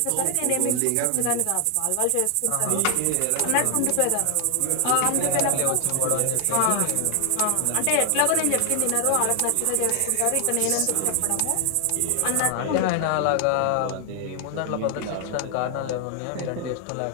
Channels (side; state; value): both; different; correlation 0.00